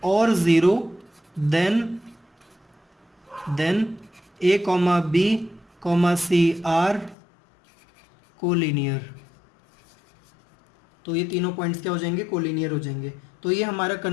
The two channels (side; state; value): right; drops out; at 7.2 s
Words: और 0 then a, b, c are collinear. तो ये तीनों पॉइंट्स क्या हो जाएंगे, कोलिनियर हो जाएंगे। तो ये हमारा